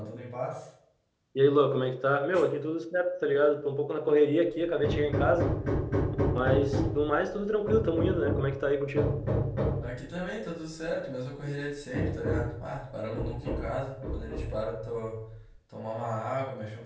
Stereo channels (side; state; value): both; identical; correlation 1.00